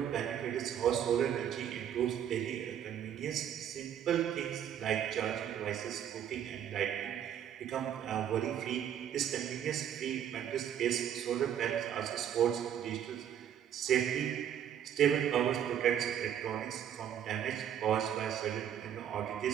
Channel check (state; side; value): quieter; left; 9.7 dB